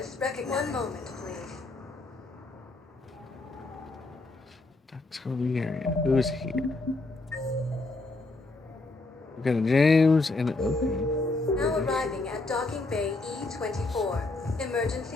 recognized. One moment, please. That's the area. Who's here? We got a James and okay. Now arriving at docking bay E24.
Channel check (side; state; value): right; quieter; 3.2 dB